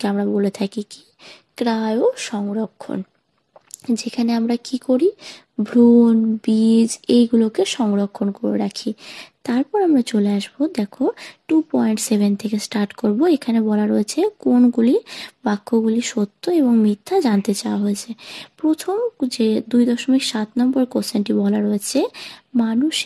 আমরা বলে থাকি কি ক্রায়ো সংরক্ষণ, যেখানে আমরা কি করি ভ্রূণ, বীজ এইগুলোকে সংরক্ষণ করে রাখি। তারপর আমরা চলে আসবো, দেখো 2.7 থেকে স্টার্ট করব। এখানে বলা রয়েছে কোনগুলি বাক্যগুলি সত্য এবং মিথ্যা জানতে চাওয়া হয়েছে। প্রথম যে 2.7 নম্বর কোশ্চেনটি বলা রয়েছে,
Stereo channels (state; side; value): identical; both; correlation 1.00